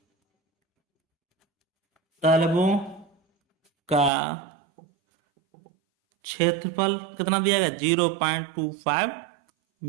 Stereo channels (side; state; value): left; drops out; at 4.1 s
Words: तलवों का क्षेत्रफल कितना दिया गया 0.25